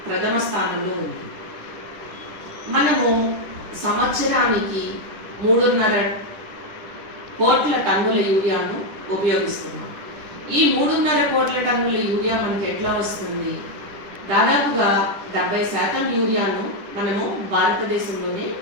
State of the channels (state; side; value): late; left; 10 ms